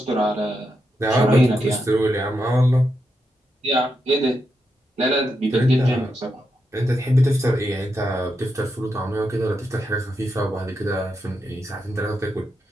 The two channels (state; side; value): normal; both; correlation 0.84